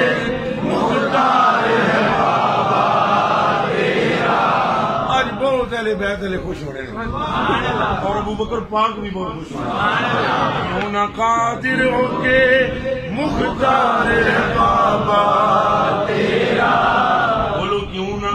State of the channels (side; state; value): both; identical; correlation 1.00